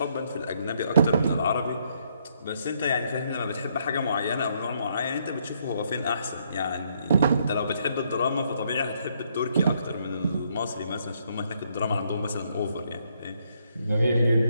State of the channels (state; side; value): inverted; both; correlation -0.72